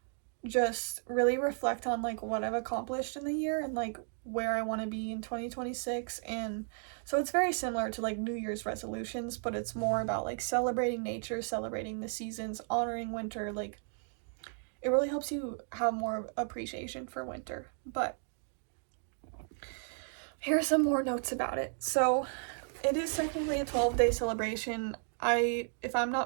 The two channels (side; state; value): left; silent; 55 dB below the other